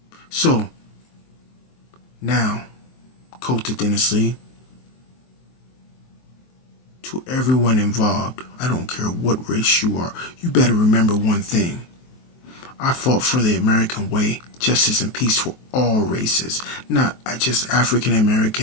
So, now, coincidentally, to everyone involved, I don't care what race you are, you better remember one thing. I fought for the American way, justice and peace for all races, not just African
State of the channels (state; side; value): late; right; 23 ms